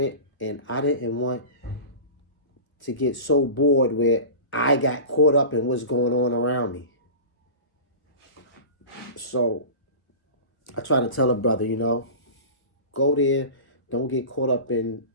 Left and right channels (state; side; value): late; right; 1.4 ms